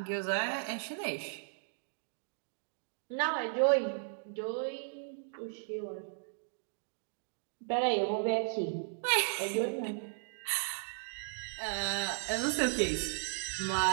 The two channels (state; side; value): silent; left; digital silence